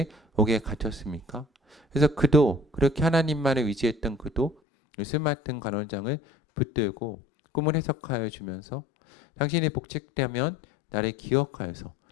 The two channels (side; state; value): right; drops out; at 4.5 s